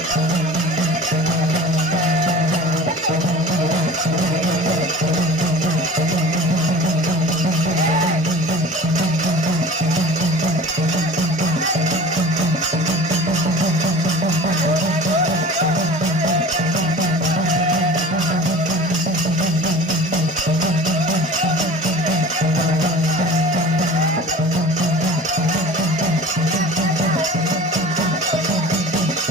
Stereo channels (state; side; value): normal; both; correlation 0.40